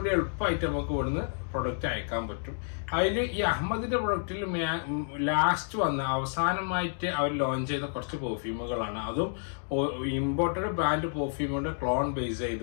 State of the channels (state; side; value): silent; right; digital silence